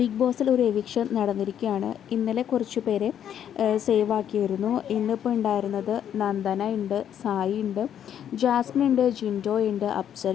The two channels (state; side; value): quieter; right; 9.6 dB